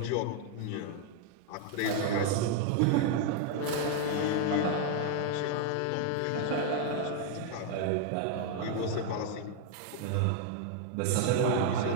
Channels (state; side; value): different; both; correlation 0.00